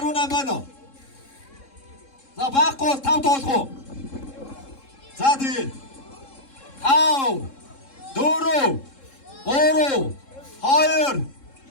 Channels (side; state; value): right; late; 3.7 ms